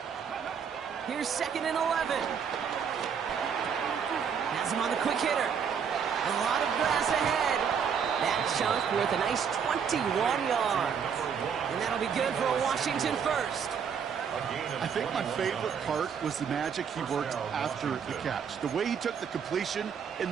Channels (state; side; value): quieter; left; 7.1 dB